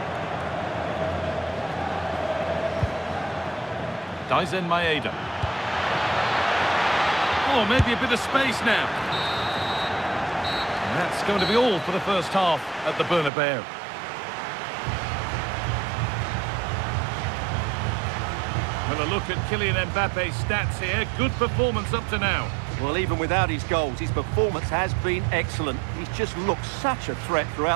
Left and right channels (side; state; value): left; drops out; at 13.3 s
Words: Dyson Maeda. Oh, maybe a bit of space now. And that's going to be all for the first half at the Bernabeu. Well, a look at Kylian Mbappe's stats here. Good performance up to now. Well, even without his goals, his performance has been excellent. He's just looked such a threat